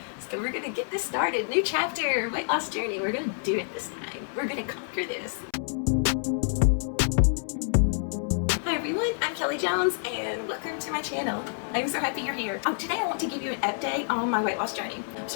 So we're gonna get this started. New chapter, weight loss journey. We're gonna do it this time. We're gonna conquer this. Hi everyone, I'm Kelly Jones and welcome to my channel. I'm so happy you're here. Today I want to give you an update on my weight loss journey. I'm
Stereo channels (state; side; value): silent; right; 59 dB below the other